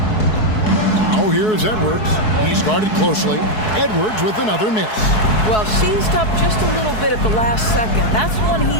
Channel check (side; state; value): right; late; 4.7 ms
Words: Now here's Edwards. He started closely. Edwards with another miss. Well, seized up just a little bit at the last second. That's when